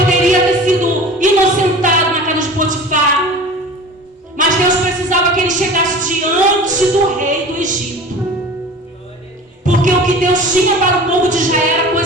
ter sido inocentado na casa de Potifar, mas Deus precisava que ele chegasse diante do rei do Egito, porque o que Deus tinha para o povo de Israel era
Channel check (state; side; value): normal; both; correlation 0.38